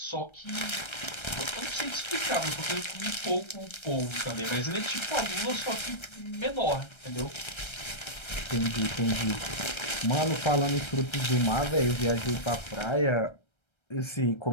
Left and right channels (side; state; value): right; late; 1.3 ms